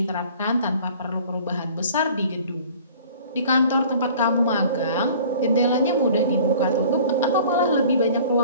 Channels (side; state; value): both; inverted; correlation -0.48